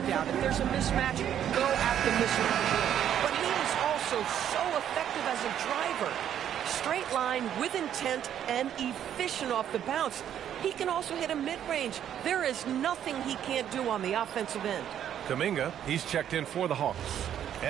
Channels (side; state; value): left; quieter; 10.0 dB